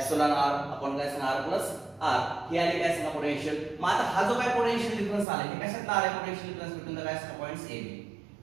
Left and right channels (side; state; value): left; drops out; at 5.2 s